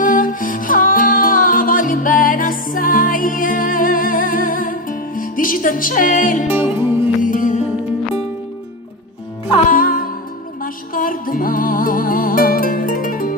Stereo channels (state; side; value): normal; both; correlation 0.14